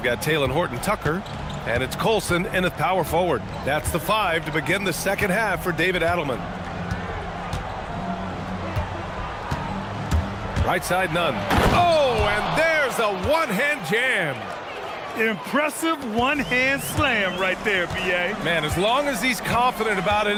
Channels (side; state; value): both; identical; correlation 1.00